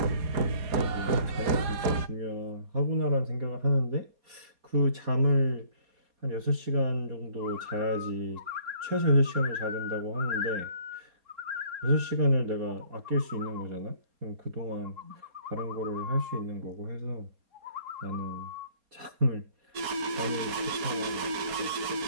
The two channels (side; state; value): left; late; 4.2 ms